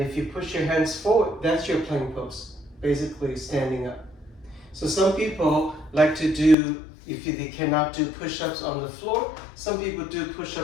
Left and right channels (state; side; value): drops out; right; at 6.6 s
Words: you push your hands forward, that's your plank pose, basically standing up. So some people like to do, they cannot do push-ups on the floor, some people do